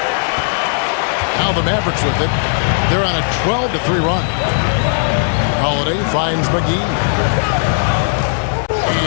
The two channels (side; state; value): right; silent; digital silence